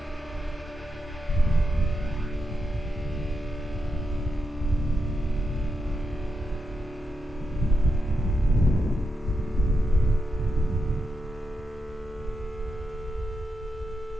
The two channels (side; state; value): both; normal; correlation 0.85